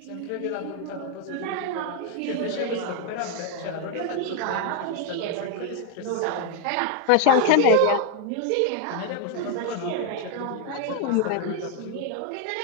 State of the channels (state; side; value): different; both; correlation 0.01